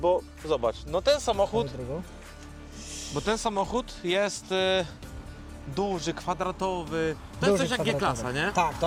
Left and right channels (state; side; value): identical; both; correlation 1.00